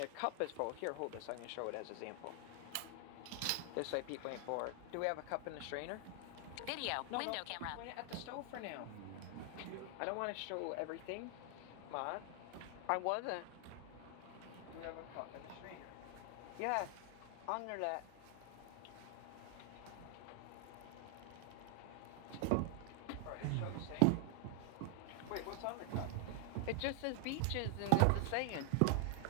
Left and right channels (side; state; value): both; different; correlation 0.00